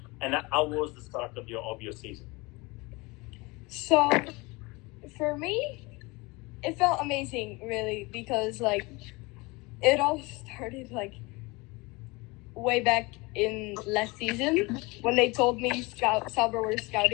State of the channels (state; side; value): quieter; right; 24.8 dB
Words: And how was the start of your season? So, for me, it felt amazing, really, because, like, it all started, like, way back in last season when they told me Sauber were